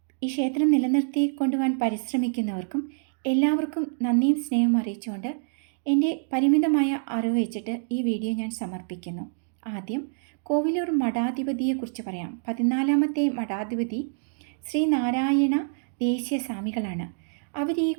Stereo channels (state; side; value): silent; left; digital silence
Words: ഈ ക്ഷേത്രം നിലനിർത്തി കൊണ്ടുപോകാൻ പരിശ്രമിക്കുന്നവർക്കും എല്ലാവർക്കും നന്ദിയും സ്നേഹവും അറിയിച്ചുകൊണ്ട് എൻ്റെ പരിമിതമായ അറിവ് വെച്ചിട്ട് ഈ വീഡിയോ ഞാൻ സമർപ്പിക്കുന്നു. ആദ്യം കോവിലൂർ മഠാധിപതിയെക്കുറിച്ച് പറയാം. 14ാമത്തെ മഠാധിപതി ശ്രീ നാരായണ ദേശീയ സ്വാമികളാണ്. അവർ ഈ